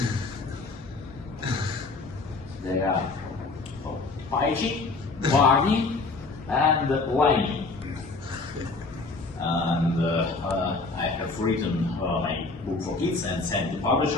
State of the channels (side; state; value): right; quieter; 3.7 dB